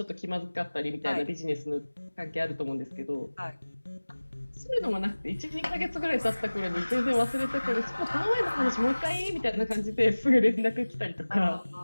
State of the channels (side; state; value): both; inverted; correlation -1.00